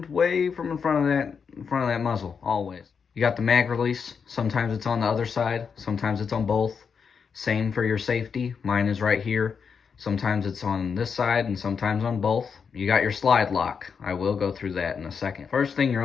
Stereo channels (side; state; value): right; quieter; 6.2 dB